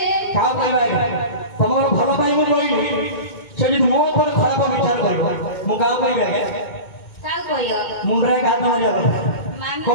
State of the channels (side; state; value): right; late; 2.2 ms